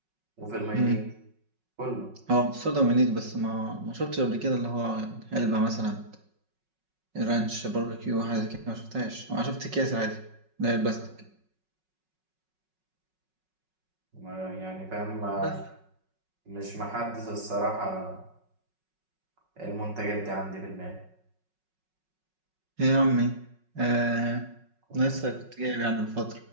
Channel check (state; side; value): late; left; 5.4 ms